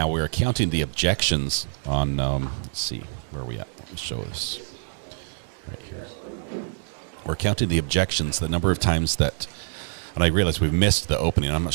We're counting the objections on, let's see, where are we at? Let me show this right here. We're counting the objections, the number of times that, and I realize we've missed the opening. I'm not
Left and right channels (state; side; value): silent; left; digital silence